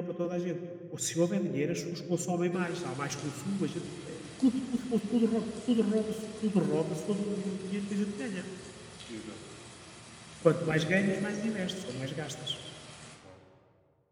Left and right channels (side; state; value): both; identical; correlation 1.00